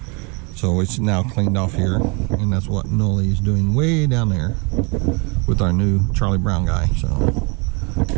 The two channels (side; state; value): left; quieter; 31.1 dB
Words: it's now cleaned off here, and that's what Nolly is doing way down there with our new Charlie Brown guy. So